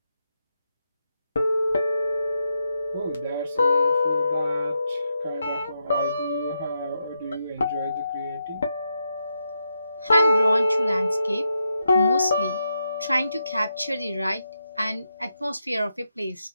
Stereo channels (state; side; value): inverted; both; correlation -0.84